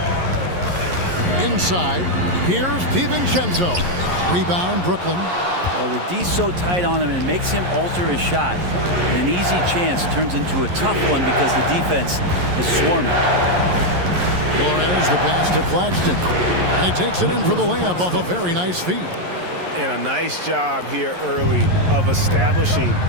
Inside, here's DiVincenzo. Rebound, Brooklyn. Well, the D's so tight on him, and it makes him alter his shot. And an easy chance turns into a tough one because the defense is swarming. Flores, the pass to Claxton. And he takes it in for the layup off a very nice feed. And a nice job here early of establishing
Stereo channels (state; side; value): late; left; 11 ms